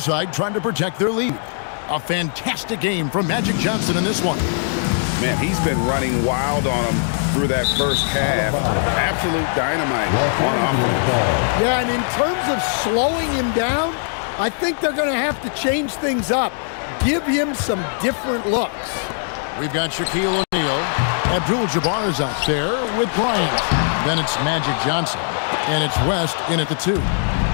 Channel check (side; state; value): right; silent; digital silence